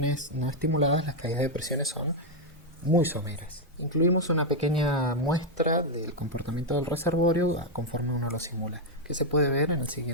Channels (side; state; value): both; normal; correlation 0.01